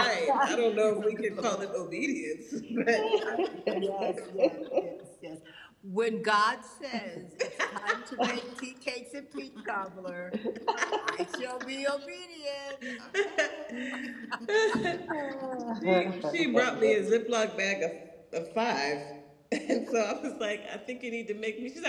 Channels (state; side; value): identical; both; correlation 1.00